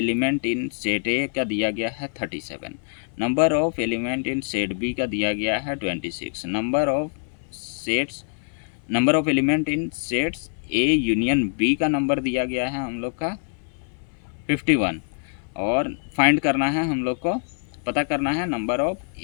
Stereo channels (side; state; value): right; silent; 58 dB below the other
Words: in set A का दिया गया है 37, number of element in set B का दिया गया है 26, number of element in sets A union B का नंबर दिया गया है हम लोग का 51, और फाइंड करना है हम लोग को, पता करना है number of